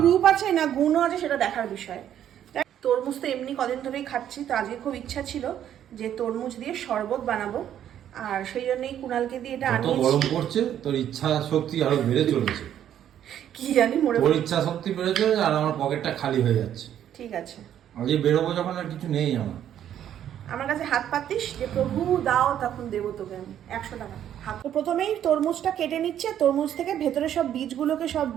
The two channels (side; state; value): left; quieter; 10.4 dB